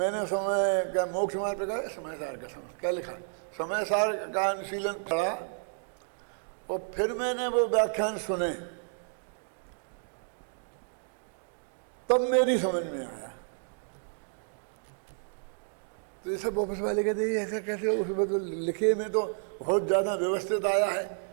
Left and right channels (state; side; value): silent; left; digital silence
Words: समय का मोक्ष मार्ग पे कहा, समय सार का समय क्या लिखा, समय सार का अनुशीलन पढ़ा और फिर मैंने वो व्याख्यान सुने, तब मेरी समझ में आया। तो ये सब ऑफिस वाले कहते हैं ऐसा कैसे, उसमें तो लिखे में तो बहुत ज़्यादा व्यवस्थित आया है,